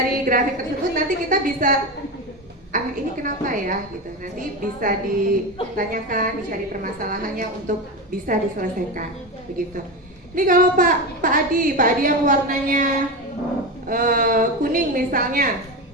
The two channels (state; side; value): normal; both; correlation 0.19